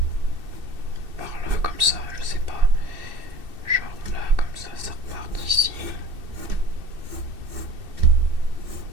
par là, comme ça, je sais pas. Genre là, comme ça repart d'ici.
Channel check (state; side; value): late; left; 2.7 ms